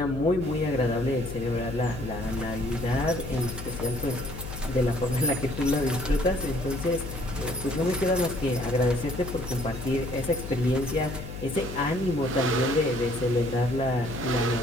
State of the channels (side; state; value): left; noise; hum, 9 dB below the sound